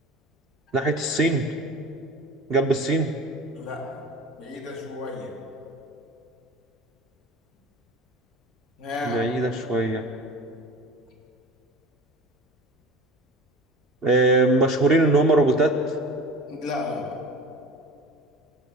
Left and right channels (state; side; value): normal; both; correlation 0.37